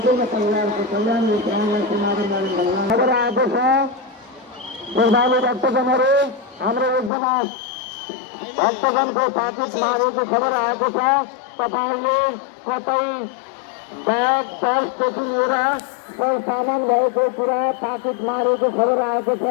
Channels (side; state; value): right; drops out; at 7.1 s